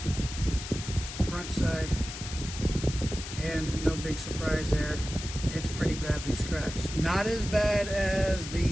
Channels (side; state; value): left; noise; hiss, 9 dB below the sound